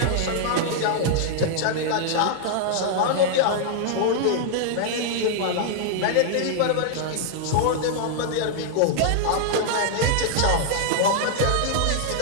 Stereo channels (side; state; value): both; different; correlation -0.01